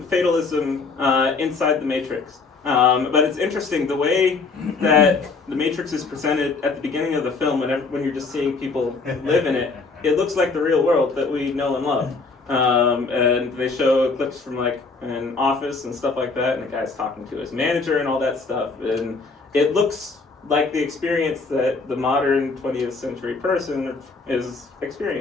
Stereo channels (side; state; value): right; quieter; 4.2 dB